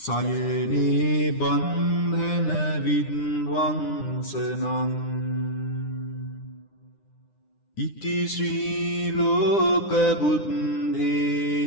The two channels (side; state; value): right; late; 9.9 ms